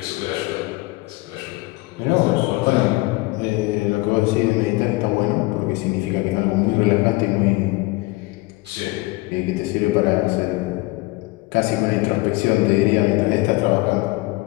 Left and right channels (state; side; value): quieter; right; 21.8 dB